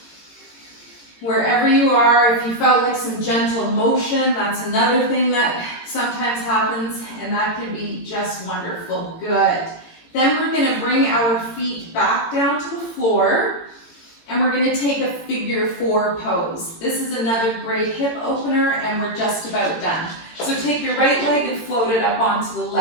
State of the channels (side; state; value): right; late; 18 ms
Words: Wherever you are, if you felt like some gentle motion, that's another thing that sometimes happens, and that can be just wonderful. Good. Then we're going to bring our feet back down to the floor, and we're going to take a figure 4 pose. This is another great hip opener, and we're just about done. So take your right leg and float it up onto the